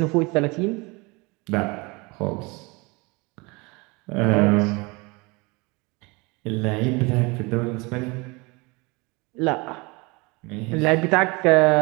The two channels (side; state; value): left; quieter; 26.5 dB